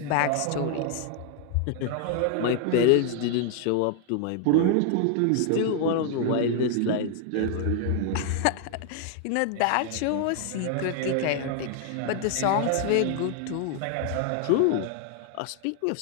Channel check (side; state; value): both; different; correlation 0.00